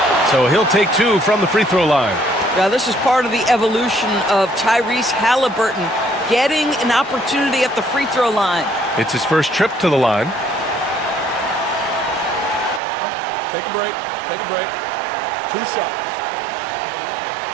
So he'll take 2 from the free throw line. Now, this is part of the evolution of Tyrese Halliburton getting an opportunity at the free throw line. It's his first trip to the line. Take a break. Take a break. 2 shots.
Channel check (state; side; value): drops out; left; at 12.8 s